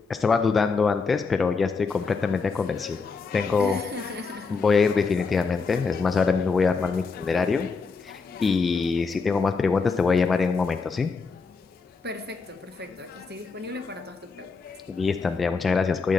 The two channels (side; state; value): right; quieter; 4.7 dB